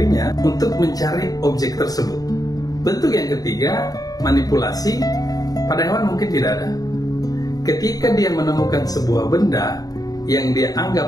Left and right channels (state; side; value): late; right; 0.18 ms